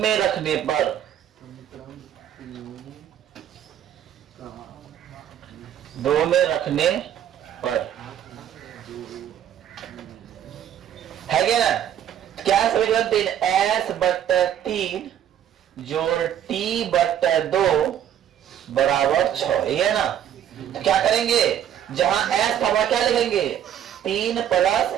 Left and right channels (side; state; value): left; quieter; 10.2 dB